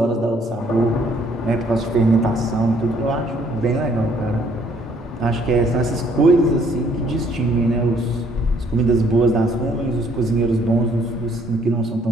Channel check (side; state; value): both; normal; correlation 0.64